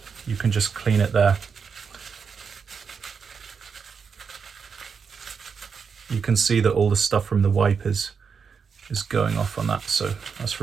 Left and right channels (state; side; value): quieter; left; 6.0 dB